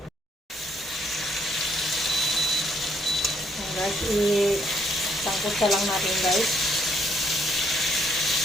Ayan guys, isangkot sa lang natin guys.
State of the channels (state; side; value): normal; both; correlation 0.70